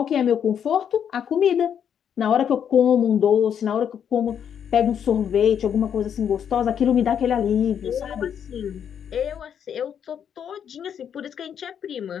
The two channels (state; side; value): quieter; right; 8.4 dB